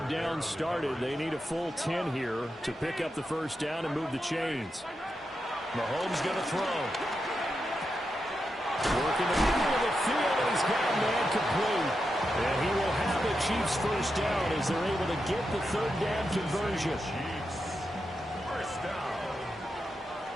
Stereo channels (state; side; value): normal; both; correlation 0.87